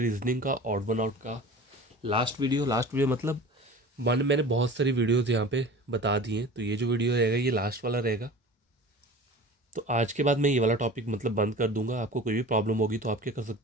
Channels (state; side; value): normal; both; correlation 0.39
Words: रीजनिंग का ऑड वन आउट का लास्ट वीडियो मतलब मैंने बहुत सारी वीडियोस यहाँ पे बता दी हैं। तो ये जो वीडियो रहेगा ये लास्ट वाला रहेगा। तो आज के बाद मैं ये वाला टॉपिक मतलब बंद कर दूंगा। आपको कोई भी प्रॉब्लम होगी तो आप क्या कर